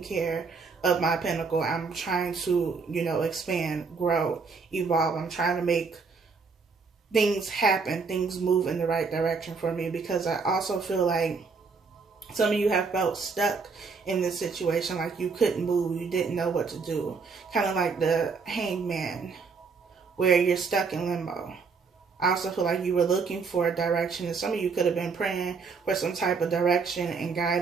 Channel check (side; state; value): left; quieter; 4.9 dB